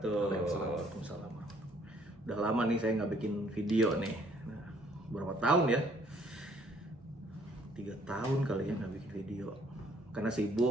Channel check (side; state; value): both; normal; correlation 0.63